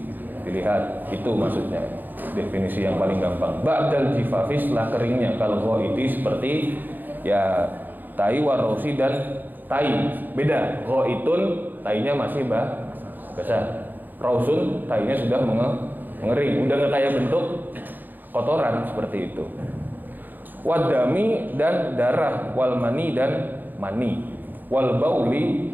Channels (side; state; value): left; late; 0.088 ms